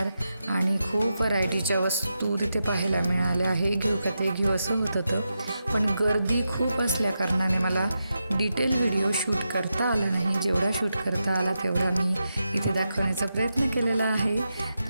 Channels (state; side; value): inverted; both; correlation -0.88